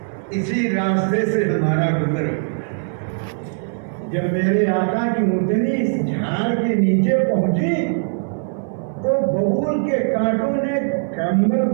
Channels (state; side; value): silent; left; 61 dB below the other